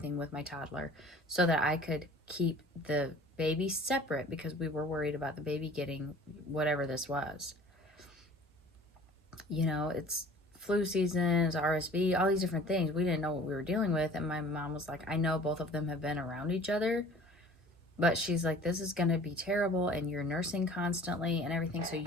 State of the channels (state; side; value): normal; both; correlation 0.47